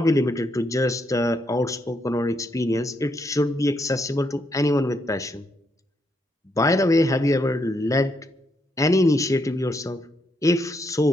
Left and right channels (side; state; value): both; normal; correlation 0.77